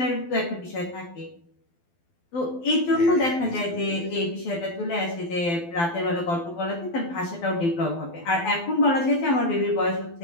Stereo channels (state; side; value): late; right; 12 ms